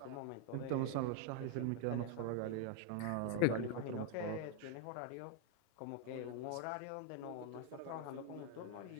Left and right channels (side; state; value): both; different; correlation 0.00